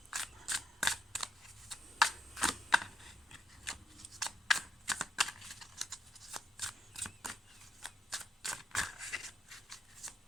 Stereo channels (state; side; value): normal; both; correlation 0.78